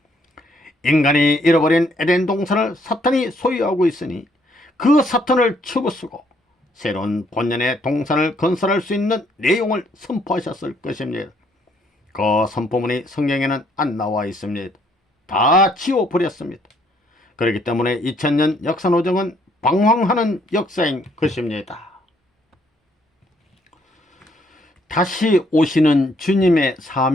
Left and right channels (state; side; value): normal; both; correlation 0.68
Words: 인간이 잃어버린 에덴 동산을 사탄이 소유하고 있으니 그 사탄을 치부수고 새로운 본연의 동산을 건설할 수 있는 내용을 선포하셨을 것입니다. 그 선포문이 성경에는 안 나와 있습니다. 다 지워버렸습니다. 그렇기 때문에 2000년 역사노정은 방황하는 역사인 것입니다. 다시 오시는 주님의